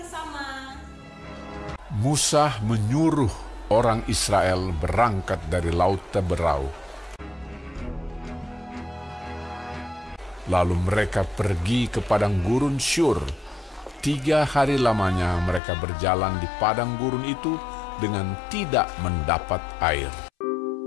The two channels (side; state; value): right; drops out; at 15.6 s